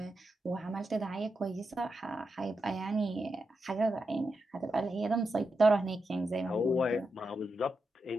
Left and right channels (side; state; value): both; normal; correlation 0.87